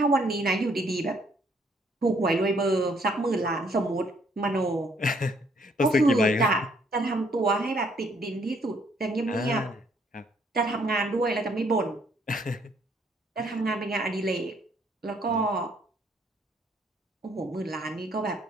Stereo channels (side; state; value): both; normal; correlation 0.66